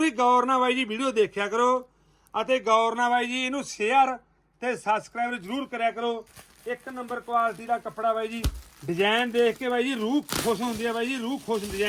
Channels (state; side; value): identical; both; correlation 1.00